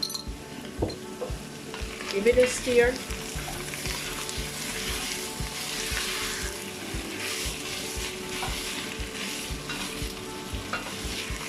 Give it a stir.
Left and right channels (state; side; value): identical; both; correlation 1.00